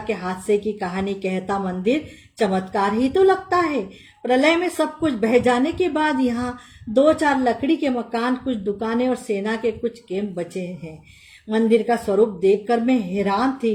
हादसे की कहानी कहता मंदिर चमत्कार ही तो लगता है। प्रलय में सब कुछ बह जाने के बाद यहाँ 2-4 लकड़ी के मकान, कुछ दुकानें और सेना के कुछ कैंप बचे हैं। मंदिर का स्वरूप देखकर मैं हैरान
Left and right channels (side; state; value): both; identical; correlation 1.00